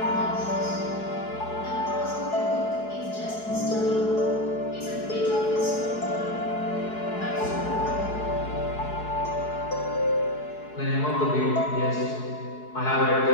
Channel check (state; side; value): late; right; 4.7 ms